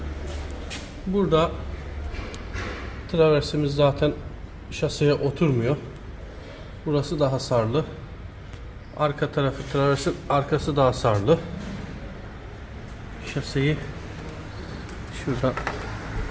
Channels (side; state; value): both; identical; correlation 1.00